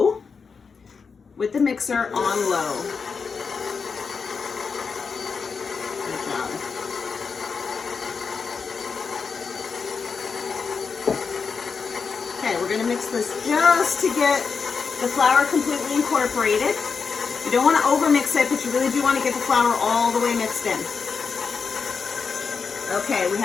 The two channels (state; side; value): quieter; right; 5.4 dB